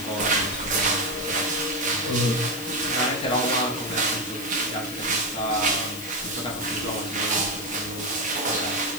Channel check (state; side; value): noise; left; hiss, 11 dB below the sound